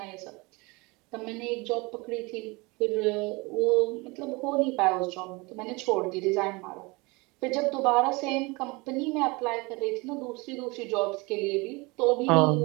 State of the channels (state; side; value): quieter; left; 25.6 dB